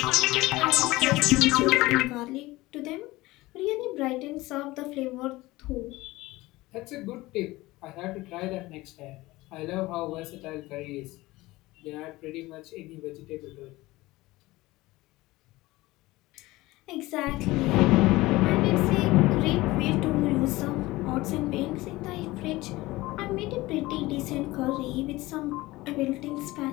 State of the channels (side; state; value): right; quieter; 19.5 dB